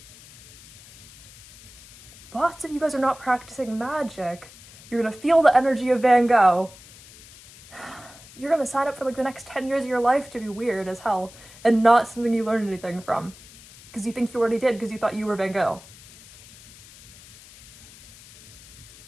Lots of you guys are not practicing magic. You're gonna feel the energy of Van Gogh. You're gonna sign up for, like, the next 10 years of your life to be weird as hell and not something you learned anything from. Because you think you already did because you thought you were Van Gogh.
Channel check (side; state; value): left; noise; hiss, 21 dB below the sound